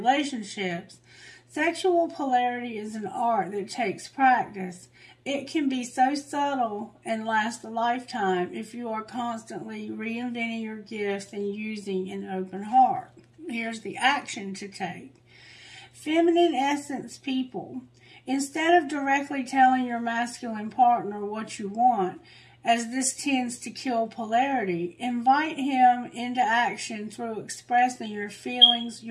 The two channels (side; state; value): both; identical; correlation 1.00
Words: Sexual polarity is an art that takes practice. It can be so subtle and last a lifetime if you are constantly reinventing your gifts and using an open heart. Here's the action to take. Feminine essence people. Instead of directly telling your masculine partner what you want, as this tends to kill polarity, invite him into action through expressing your feelings.